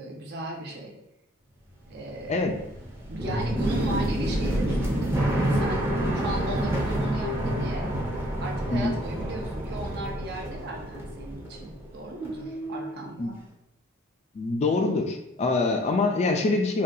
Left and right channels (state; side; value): normal; both; correlation 0.60